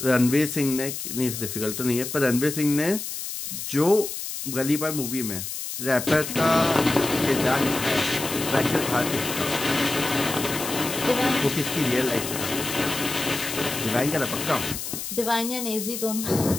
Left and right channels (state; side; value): noise; left; hiss, 6 dB below the sound